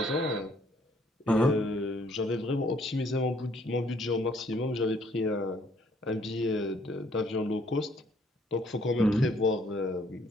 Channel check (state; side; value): normal; both; correlation 0.65